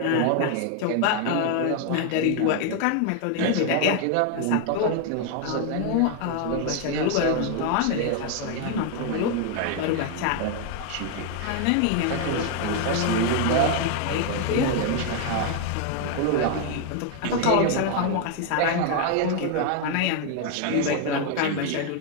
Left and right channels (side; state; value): both; different; correlation 0.01